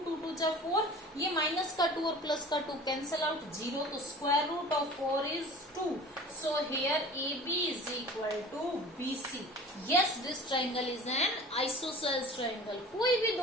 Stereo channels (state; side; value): normal; both; correlation 0.41